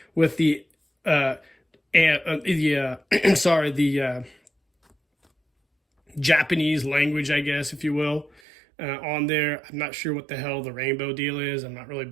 with the Japanese language, I guess, if you will, on there. I'm not sure what the hell the rainbow deal is. I'm not really a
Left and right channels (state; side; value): drops out; left; at 8.4 s